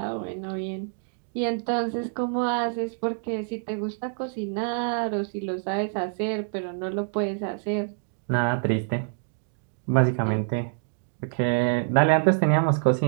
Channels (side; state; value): left; silent; digital silence